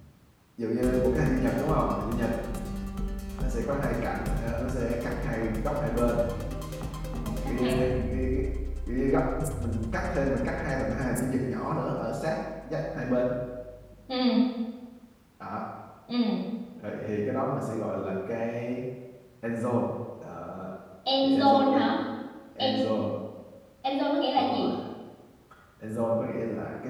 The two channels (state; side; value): identical; both; correlation 1.00